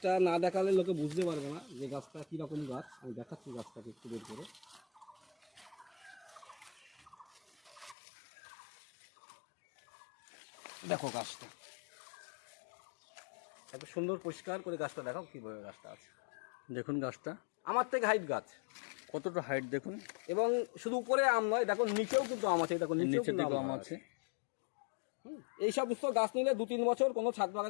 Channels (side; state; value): right; drops out; at 8.0 s